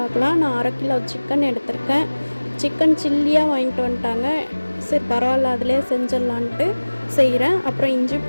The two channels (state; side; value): inverted; both; correlation -1.00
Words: நான் 1/2 கிலோ சிக்கன் எடுத்திருக்கேன். சிக்கன் சில்லியாக வாங்கிட்டு வந்துட்டாங்க. சரி பரவாயில்ல, அதிலே செஞ்சிடலான்ட்டு செய்கிறேன். அப்புறம் இஞ்சி